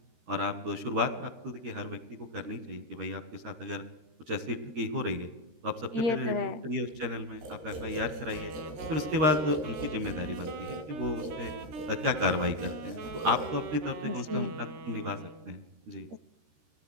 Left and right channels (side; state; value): left; late; 13 ms